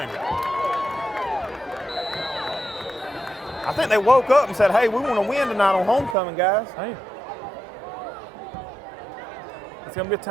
I think they woke up and said, hey, we want to win tonight on homecoming, guys. Hey. It's going to be a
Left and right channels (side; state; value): left; drops out; at 6.2 s